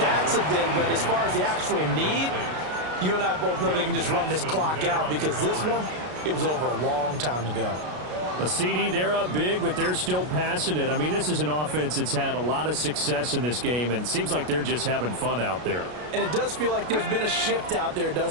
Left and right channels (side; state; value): left; late; 33 ms